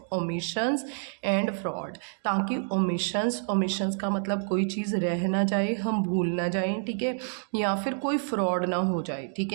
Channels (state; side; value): silent; left; 59 dB below the other